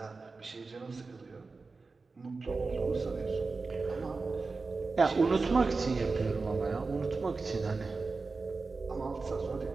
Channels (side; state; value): left; quieter; 4.1 dB